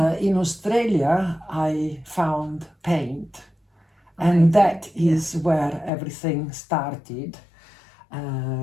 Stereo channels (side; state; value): right; drops out; at 5.9 s